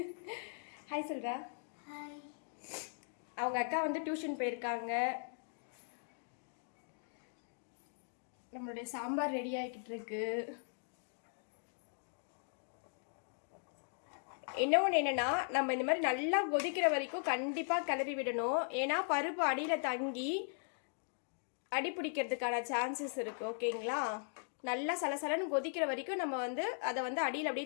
ஹாய் சொல்றா. அவங்க அக்கா வந்து டியூஷன் போயிருக்காங்க. நம்மளுடைய சாம்பார் ரெடி ஆகிக்கிட்டு இருக்கு. இன்னொன்று என்னென்னா, நம்ம இந்த மாதிரி நல்லா கொதிக்கிற வரைக்கும் கண்டிப்பாக கிளறி விடணும். ஏன்னா பருப்பு அடியில் தங்கி அடி பிடிக்கிறதுக்கான சான்சஸ் இருக்குது. ஓகேங்களா, நல்லா சலசலன்னு கொதிக்கிற வரைக்கும் நம்ம வந்து அதை வந்து அடியில்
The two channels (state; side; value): silent; right; digital silence